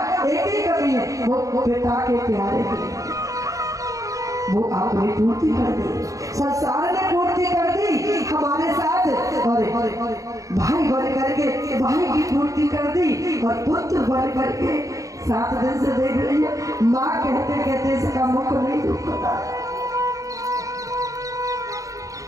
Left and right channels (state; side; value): late; left; 0.16 ms